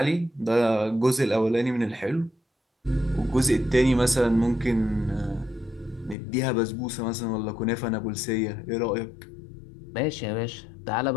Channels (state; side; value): drops out; right; at 6.2 s